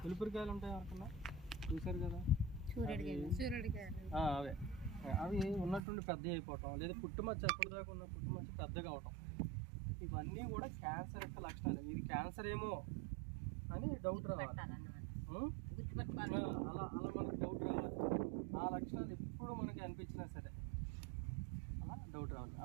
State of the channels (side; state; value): left; drops out; at 5.8 s